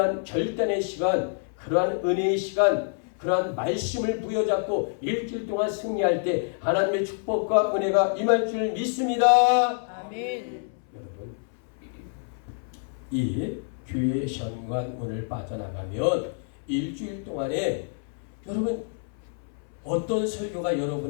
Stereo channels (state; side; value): silent; right; 60 dB below the other